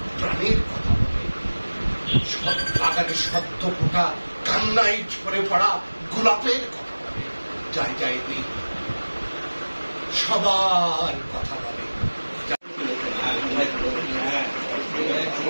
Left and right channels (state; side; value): inverted; both; correlation -1.00